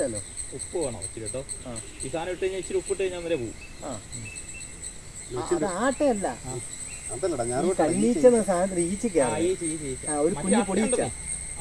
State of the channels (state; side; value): identical; both; correlation 1.00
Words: ഉപ്പ് വേണോ ഇച്ചിരി കേട്ടോ? ഈ സാധനം ഇട്ട് കഴിഞ്ഞാൽ ഇച്ചിരി ഉപ്പിട്ട് കഴിഞ്ഞാൽ വരെ പോകും. അത് ആട്ടയല്ല, കണ്ണീച്ച സാധനത്തിന് ഈച്ചയ്ക്കാണ്. ഒരു കുഞ്ഞു പൊടിയിച്ച